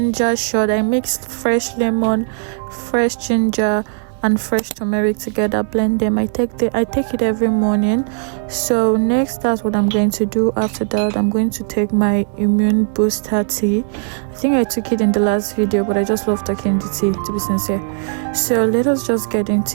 shot. I mixed fresh lemon, fresh ginger, and fresh turmeric together, blend them. I take it every morning. So next, that's what I'm going to do. After that, I'm going to take my immune booster tea. I think I took it in the last video, but I just love taking the tea, to be sincere. So let us just get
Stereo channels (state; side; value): silent; left; digital silence